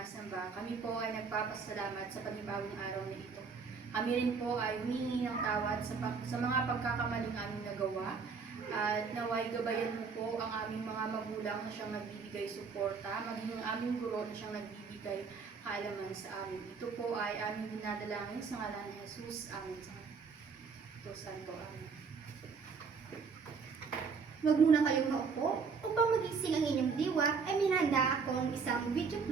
Kami po ay nagpapasalamat sa panibagong araw na ito. Kami rin po ay humingi ng tawad sa mga pagkakamaling aming nagawa. At naway gabayan mo po ang aming mga magulang na siyang nagbibigay suporta, maging ang aming guro na siyang nagbibigay kaalaman sa amin. Ito po ay aming dinadalangin sa ngalan ni Jesus. Amen. Ito Santo. Amen. Huwag muna kayong maupo. Upang magising ang inyong diwa, ay minahanda akong isang video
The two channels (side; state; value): left; quieter; 5.3 dB